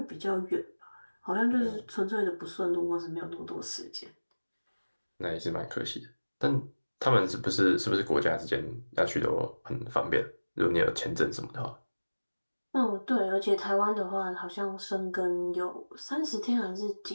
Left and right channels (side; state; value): both; inverted; correlation -1.00